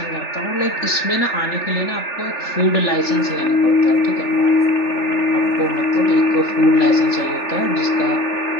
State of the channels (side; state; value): right; late; 3.5 ms